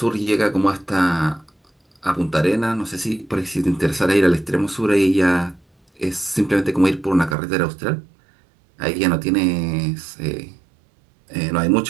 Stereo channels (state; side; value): drops out; left; at 7.4 s